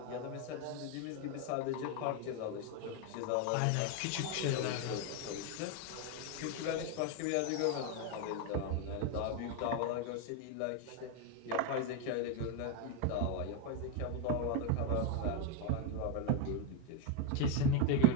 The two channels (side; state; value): both; different; correlation 0.02